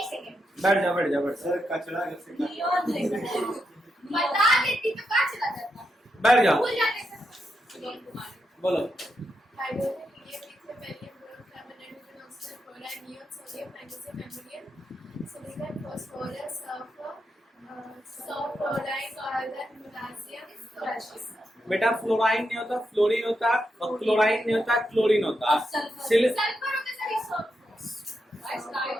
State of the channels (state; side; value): normal; both; correlation 0.84